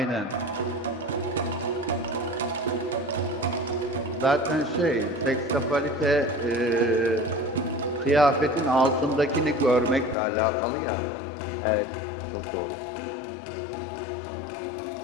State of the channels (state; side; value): drops out; right; at 10.2 s